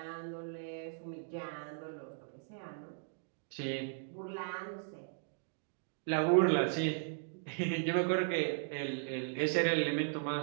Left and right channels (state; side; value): silent; left; digital silence